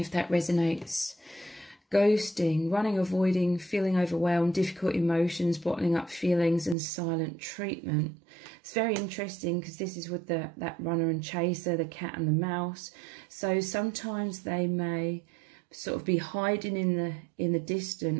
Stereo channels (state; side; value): drops out; left; at 6.8 s